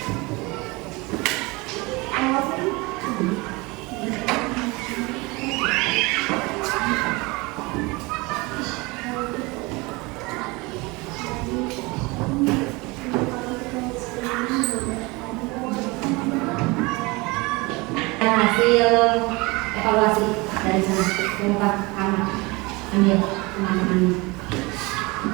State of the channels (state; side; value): quieter; left; 24.8 dB